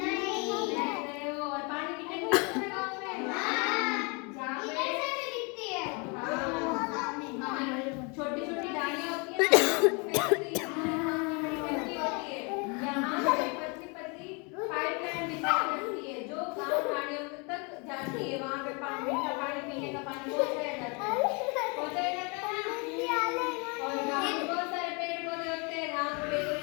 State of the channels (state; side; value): quieter; right; 32.0 dB